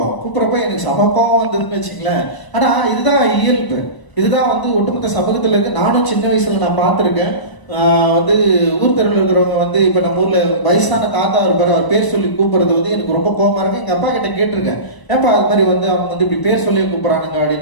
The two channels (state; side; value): late; right; 1.0 ms